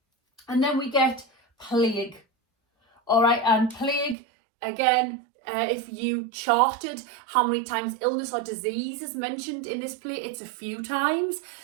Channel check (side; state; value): left; drops out; at 4.2 s